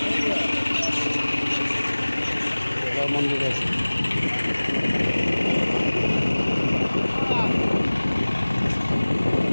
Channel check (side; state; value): both; inverted; correlation -1.00